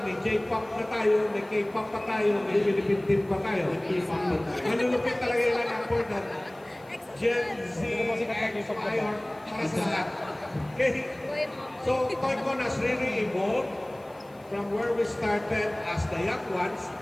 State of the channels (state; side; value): noise; left; hiss, 30 dB below the sound